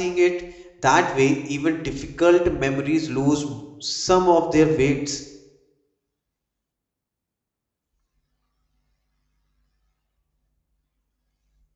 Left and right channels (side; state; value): both; identical; correlation 1.00